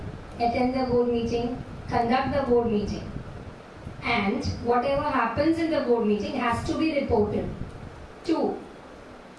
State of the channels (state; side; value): identical; both; correlation 1.00